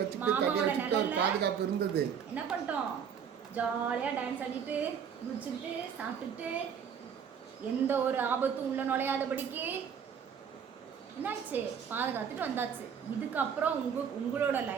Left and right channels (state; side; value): quieter; left; 7.5 dB